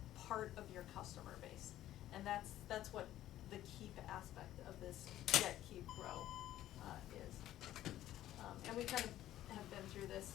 part of your customer base? And that's what the keep aspect of this get, keep, grow is. And we kind of have been through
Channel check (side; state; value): right; quieter; 13.4 dB